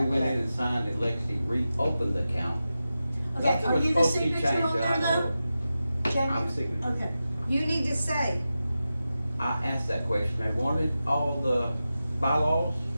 up went yet. in and signed it. Lexi reopened the account. Okay, That's are what's you the supposed to be signature changed, on I there know. though? Jamie? I'm signature. Okay. You need to say, I asked that question. They wanted all the bylaws.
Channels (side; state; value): both; inverted; correlation -0.92